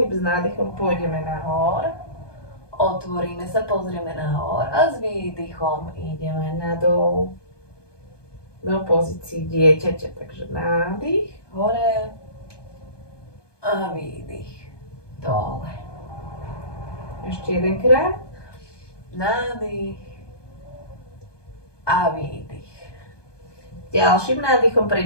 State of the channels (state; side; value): late; right; 1.2 ms